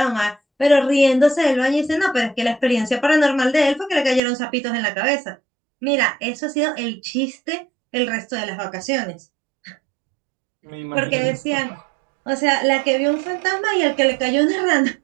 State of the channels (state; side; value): drops out; left; at 4.2 s